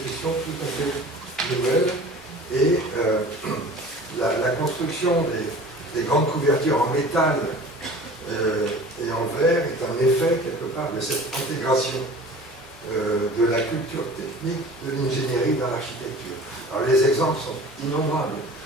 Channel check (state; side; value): normal; both; correlation 0.42